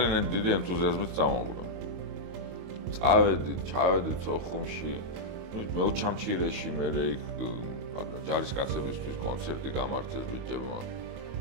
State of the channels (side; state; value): left; late; 22 ms